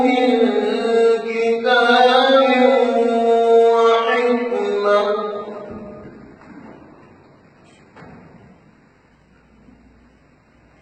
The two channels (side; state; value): both; identical; correlation 1.00